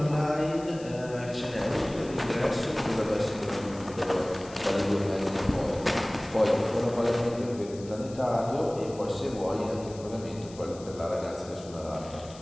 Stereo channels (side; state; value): left; noise; hiss, 20 dB below the sound